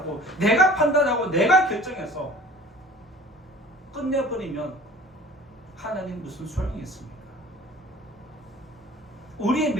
내가 판단하고 내가 결정해서 끝내버리면 하나님 무슨 소용이 있습니까? 우리의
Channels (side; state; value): both; normal; correlation 0.46